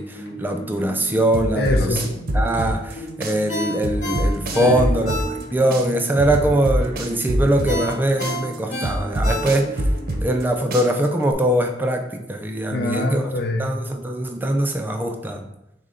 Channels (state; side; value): normal; both; correlation 0.69